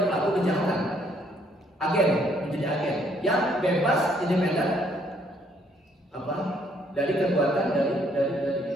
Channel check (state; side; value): normal; both; correlation 0.67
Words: pelaku kejahatan, agen, menjadi agen yang bebas independen apa dari kekuatan dari